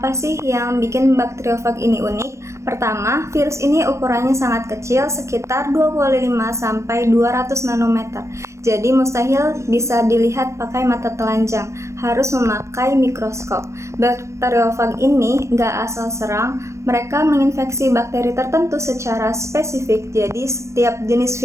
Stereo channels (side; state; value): left; late; 0.14 ms